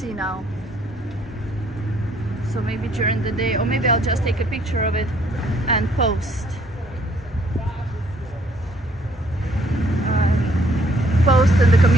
now. So maybe during the day, or maybe I'll just take a picture of it and post. Post in the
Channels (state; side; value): normal; both; correlation 0.64